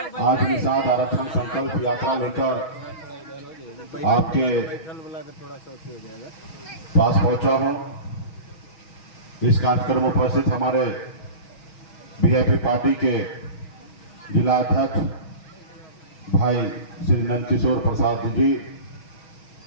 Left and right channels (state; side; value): late; right; 6.3 ms